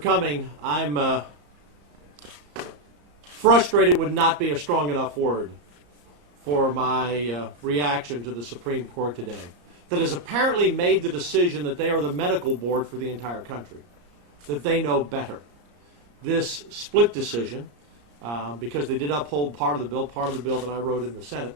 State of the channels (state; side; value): late; left; 34 ms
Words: I'm frustrated would not be a strong enough word for my reaction to the Supreme Court today, that has apparently made the decision that they are the medical board for the entire country, that they know better. This split decision, because they did uphold part of the bill that I wrote in the Senate,